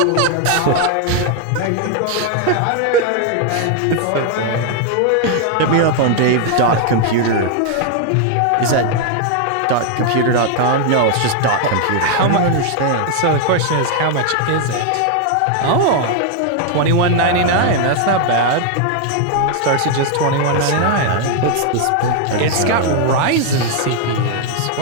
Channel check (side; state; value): both; different; correlation 0.00